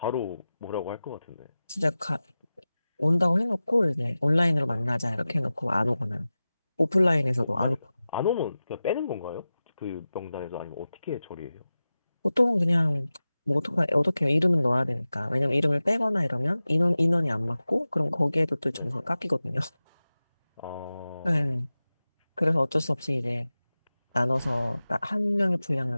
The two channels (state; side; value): inverted; both; correlation -0.95